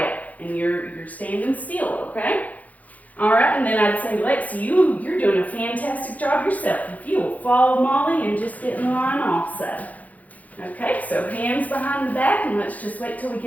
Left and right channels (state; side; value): late; right; 0.076 ms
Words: and you're standing still, okay? All right, and then I'd say, Lexi, you're doing a fantastic job yourself. If you will follow Molly and just get in line also. Okay, so hands behind the back, and let's just wait till we